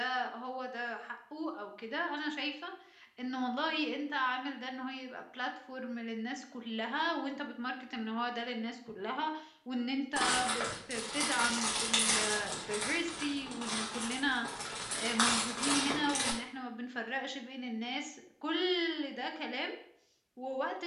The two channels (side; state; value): both; identical; correlation 1.00